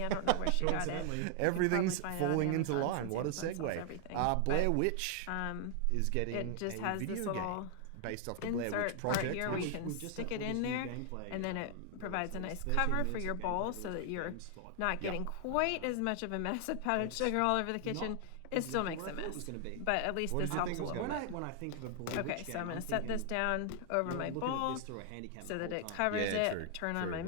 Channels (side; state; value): both; different; correlation 0.00